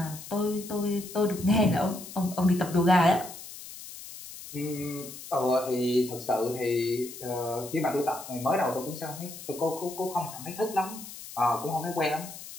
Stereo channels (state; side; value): noise; left; hiss, 13 dB below the sound